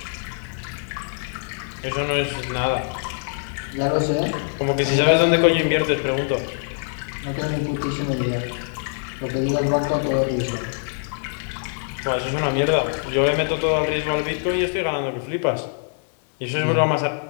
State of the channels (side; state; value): right; silent; 59 dB below the other